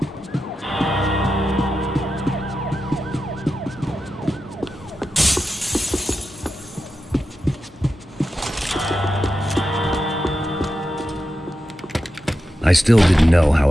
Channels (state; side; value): normal; both; correlation 0.90